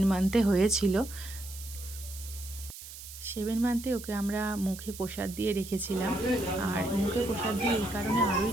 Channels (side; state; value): right; noise; hiss, 13 dB below the sound